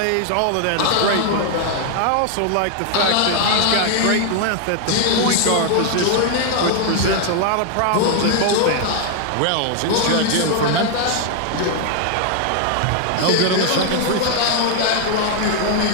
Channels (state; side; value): different; both; correlation 0.00